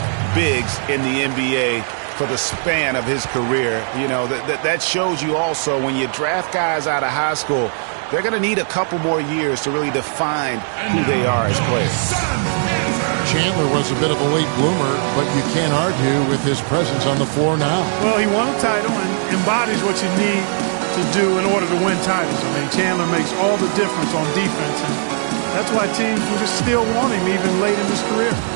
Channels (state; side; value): silent; left; digital silence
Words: bigs in the NBA for the span of his career. You know, that shows you also when you draft guys out of high school, they're going to need a couple more years to really define who they are as players. Chandler was a bit of a late bloomer, but you can't argue with his presence on the floor now. Well, he won a title and embodies what you need to do in order to win titles. I mean, Chandler makes all the difference on defense, and that's why teams will just still want him even late in his career.